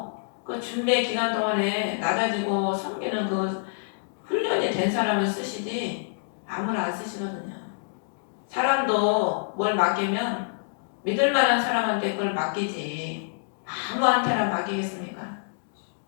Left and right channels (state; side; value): silent; right; digital silence